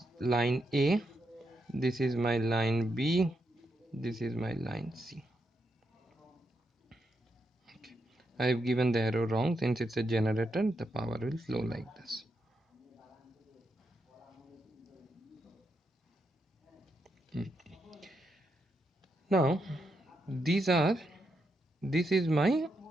line A. This is my line B. This is my line C. Okay. I have given the arrow wrong. Since it's a generator, the power will flow like this. Now this is my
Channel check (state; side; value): normal; both; correlation 0.82